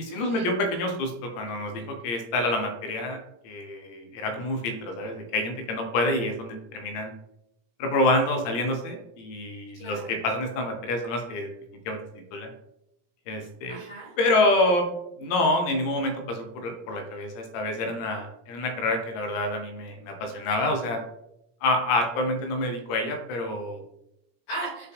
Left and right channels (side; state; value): right; late; 17 ms